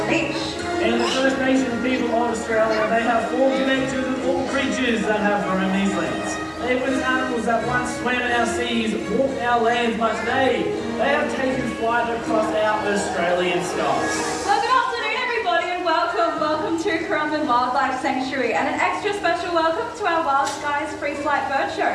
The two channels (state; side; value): identical; both; correlation 1.00